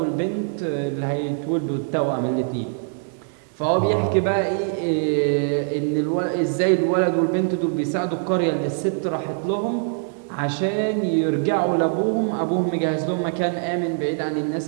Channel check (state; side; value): silent; left; 59 dB below the other